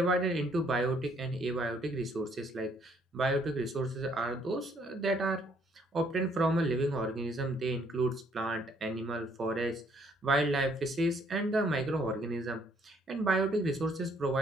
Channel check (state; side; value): normal; both; correlation 0.66